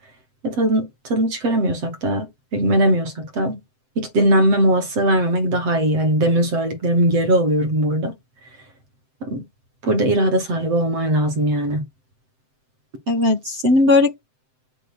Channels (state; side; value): late; left; 7.7 ms